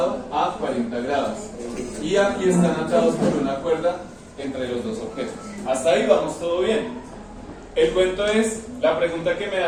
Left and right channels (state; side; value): identical; both; correlation 1.00